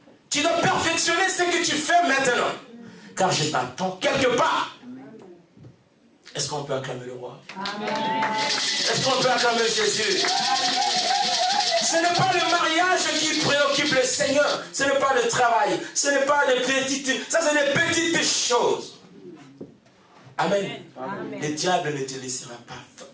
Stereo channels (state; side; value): identical; both; correlation 1.00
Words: Tu dois perfectionner ce que tu fais maintenant. Car je t'attends quelque part. Est-ce qu'on peut acclamer le roi? Amen. Est-ce qu'on peut acclamer Jésus? Ce n'est pas le mariage qui préoccupe le Seigneur. Ce n'est pas le travail. Ce n'est pas des petites... Ça, c'est des petites choses. Amen. Amen. Le diable ne te laissera pas